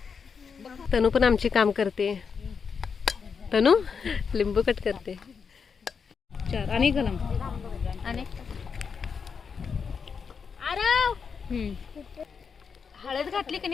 तनू पण आमची काम करते. तनू लिंबू कट करते. चार आणि गलम आणि हळद घातली की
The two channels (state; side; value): quieter; right; 5.9 dB